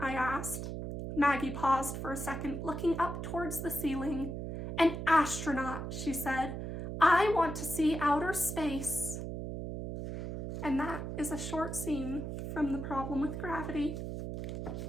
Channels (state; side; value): noise; right; hum, 5 dB below the sound